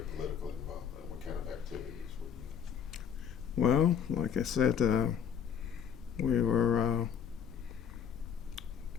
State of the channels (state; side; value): quieter; right; 7.8 dB